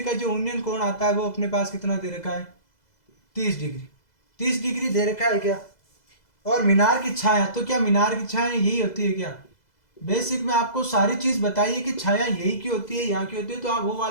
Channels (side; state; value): right; late; 2.0 ms